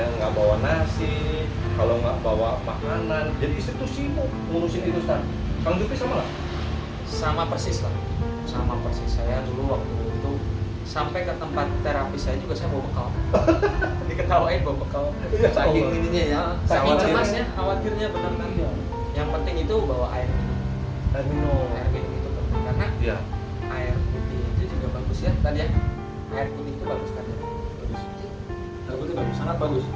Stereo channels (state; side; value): identical; both; correlation 1.00